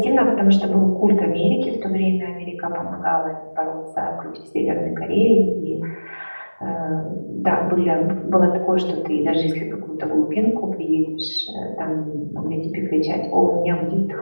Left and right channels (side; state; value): both; inverted; correlation -1.00